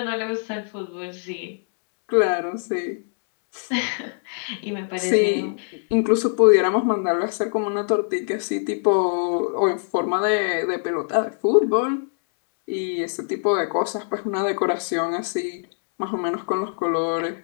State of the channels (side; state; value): right; silent; 63 dB below the other